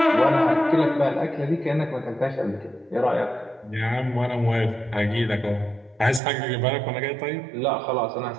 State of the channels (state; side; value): drops out; left; at 6.2 s